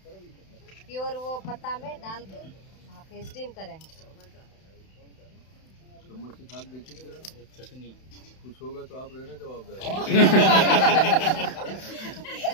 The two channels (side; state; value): right; late; 31 ms